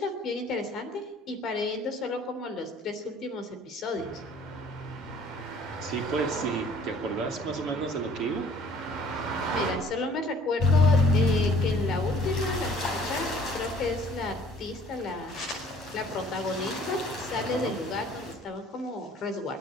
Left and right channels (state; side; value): normal; both; correlation 0.53